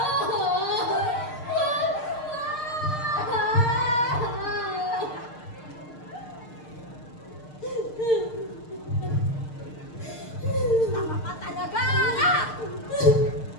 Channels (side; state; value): right; late; 6.6 ms